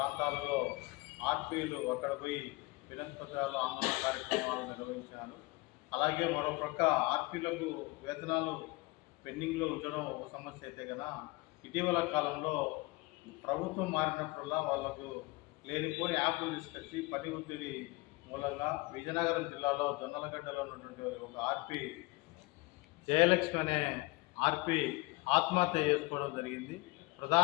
ఆర్పీలు అక్కడ పోయి వినతిపత్రాలు ఆందోళన కార్యక్రమాలు నిర్వహించారు. అలాగే మరోపక్క ఆర్పీలకు వేతనాలు పెండింగ్లో ఉంచడం ఒక సమస్య అయితే కనుక ఇటీవల కాలంలో ప్రభుత్వం మారినప్పుడల్లా వాళ్లకు లేనిపోని యాప్లు తీసుకొచ్చి పని ఒత్తిడి మూలంగా విజయనగరం జిల్లాలో జొన్నలగడ్డలో ఉన్నటువంటి ఒక ఆర్పీ జయలక్ష్మి అనే ఆర్పీ ఆత్మహత్య చేసుకోవడం జరిగింది.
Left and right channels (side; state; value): right; quieter; 23.2 dB